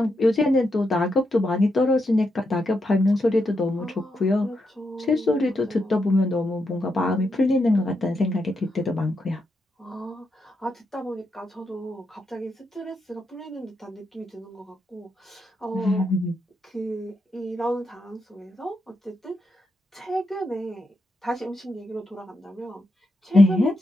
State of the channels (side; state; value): both; normal; correlation 0.83